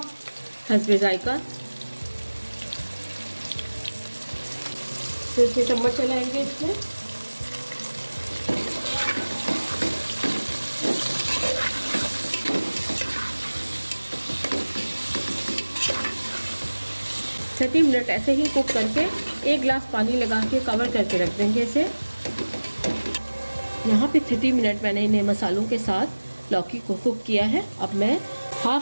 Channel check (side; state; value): both; inverted; correlation -1.00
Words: हस्बे जायका, फिर से चम्मच चलाएंगे इसमें। थर्टी मिनट ऐसे ही कुक करके 1 गिलास पानी लगा के कवर करके रख देंगे इसे। यहाँ पे 30 मिनट मैंने इन्हें मसालों के साथ लौकी को कुक किया है। अब मैं